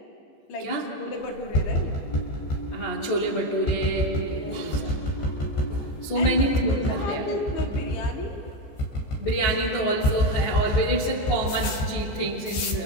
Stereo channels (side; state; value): right; late; 15 ms